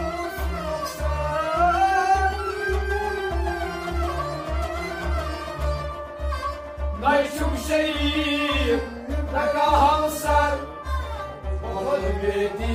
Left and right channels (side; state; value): both; identical; correlation 1.00